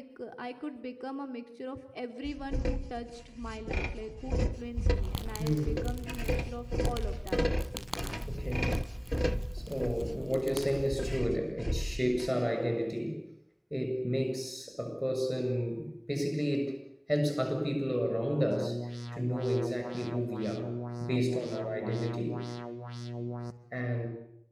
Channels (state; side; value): identical; both; correlation 1.00